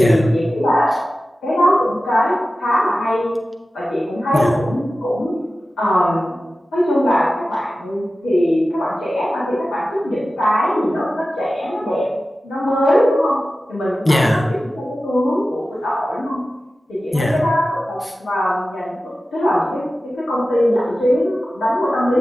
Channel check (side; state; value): both; normal; correlation 0.95